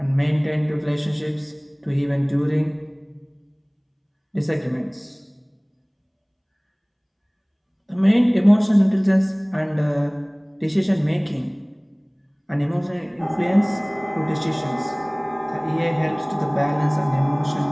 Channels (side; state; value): both; identical; correlation 1.00